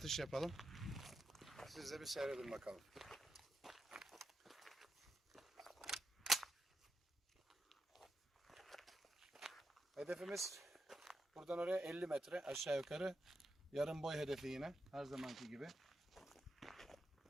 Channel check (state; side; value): normal; both; correlation 0.85